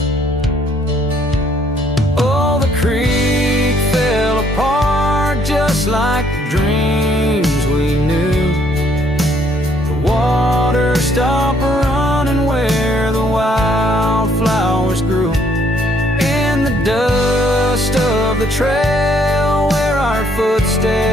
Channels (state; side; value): normal; both; correlation 0.66